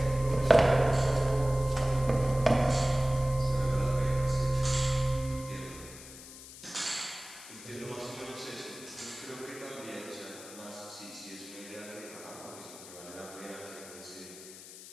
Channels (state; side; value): noise; left; hiss, 16 dB below the sound